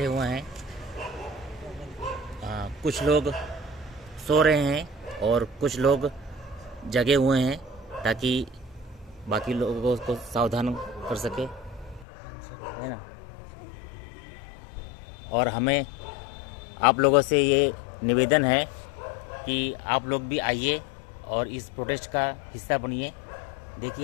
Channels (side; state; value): right; drops out; at 12.1 s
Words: हुए हैं। कुछ लोग सो रहे हैं और कुछ लोग जगे हुए हैं ताकि बाकी लोगों को सावधान कर सके, है ना। और हमें आप लोगों से ये निवेदन है कि आप लोग भी आइए और इस प्रोटेस्ट का हिस्सा बनिए।